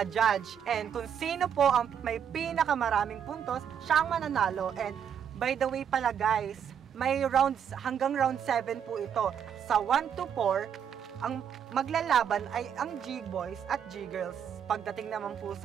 And kung sino po ang may pinakamaraming puntos, siya ang mananalo. And by the way pala guys, may rounds hanggang round 7 po ito. Sa 1 to 4, ang maglalaban ay ang G-Boys at G-Girls. Pagdating naman po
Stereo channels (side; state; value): left; quieter; 8.3 dB